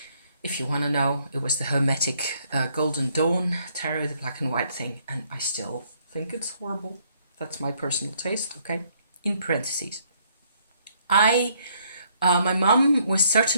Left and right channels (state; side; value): inverted; both; correlation -0.68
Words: If you want to know, it was the Hermetic Golden Dawn tarot, the black and white thing, and I still think it's horrible. That's my personal taste, okay? In parentheses. My mum was